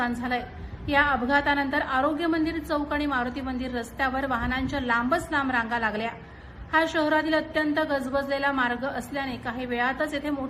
झालंय। या अपघातानंतर आरोग्य मंदिर चौक आणि मारुती मंदिर रस्त्यावर वाहनांच्या लांबच लांब रांगा लागल्या। हा शहरातील अत्यंत गजबजलेला मार्ग असल्याने काही वेळातच येथे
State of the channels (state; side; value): identical; both; correlation 1.00